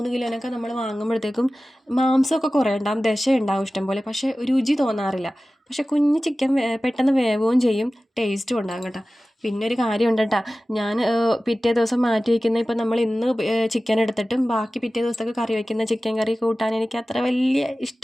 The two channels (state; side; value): normal; both; correlation 0.96